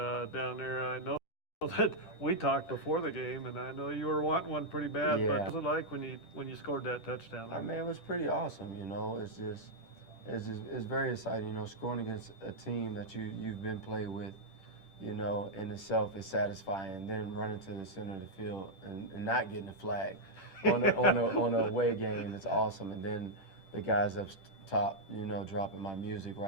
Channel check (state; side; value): late; right; 10 ms